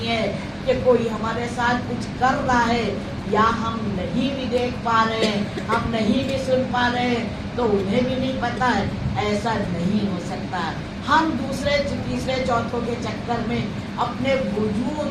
है कि कोई हमारे साथ कुछ कर रहा है या हम नहीं भी देख पा रहे हैं, हम नहीं भी सुन पा रहे हैं, तो उन्हें भी नहीं पता है। ऐसा नहीं हो सकता। हम दूसरे तीसरे चौथों के चक्कर में अपने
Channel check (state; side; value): identical; both; correlation 1.00